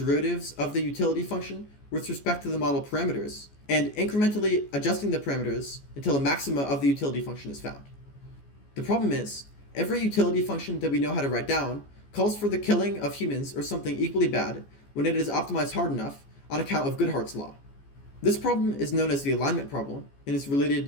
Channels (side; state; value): right; late; 14 ms